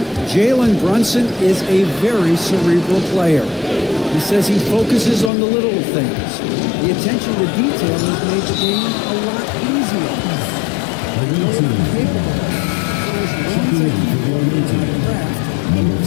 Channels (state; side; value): drops out; right; at 5.3 s